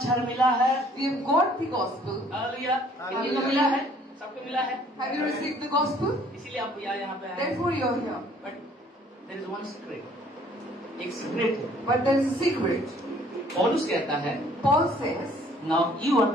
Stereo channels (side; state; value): both; normal; correlation 0.59